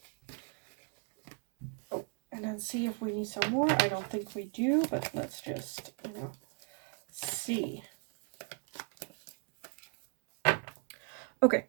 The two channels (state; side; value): quieter; left; 36.5 dB